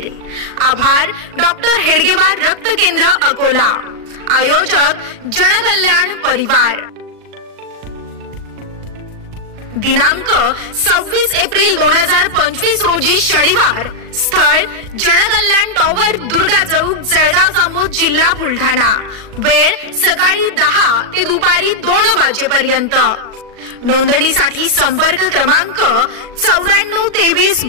आभार डॉक्टर हेडगेवार रक्त केंद्र अकोला। आयोजक जनकल्याण परिवार। दिनांक 26 एप्रिल 2025 रोजी शनिवार। स्थळ जनकल्याण टॉवर दुर्गा चौक जळगाव जामोद जिल्हा बुलढाणा। वेळ सकाळी 10 ते दुपारी 2 वाजेपर्यंत। नोंदणीसाठी संपर्क क्रमांक 94 23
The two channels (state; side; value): late; left; 38 ms